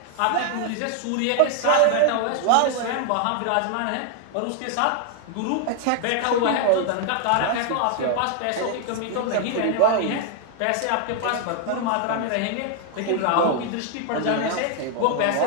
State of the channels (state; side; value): different; both; correlation 0.00